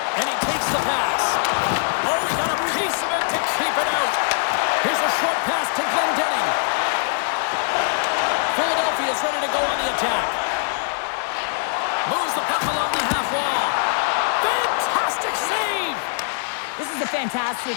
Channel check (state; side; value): silent; right; digital silence